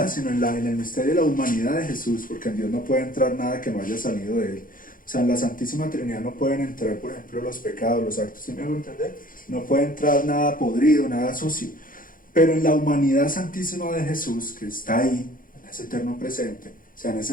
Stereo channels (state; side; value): late; right; 0.40 ms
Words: sino en el misterio de la humanidad de Jesús, porque en Dios no puede entrar nada que no haya salido de Él. O sea, en la Santísima Trinidad no pueden entrar, por ejemplo, los pecados, los actos, ¿sí me hago entender? No puede entrar nada podrido, nada sucio. Pero en la humanidad santísima de Jesús, que está ahí, en ese eterno presente, o sea, en